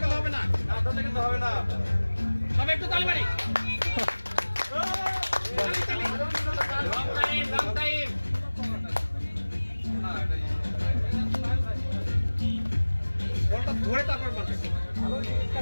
গেলে হবে না। না ধরলে কিন্তু হবে না। সবাই একটু তালি মারি। Long time. বলটা ধরে তারপর মারবে।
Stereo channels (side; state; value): both; inverted; correlation -1.00